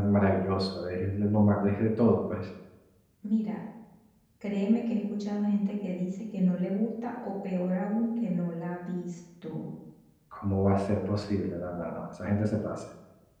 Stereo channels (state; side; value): identical; both; correlation 1.00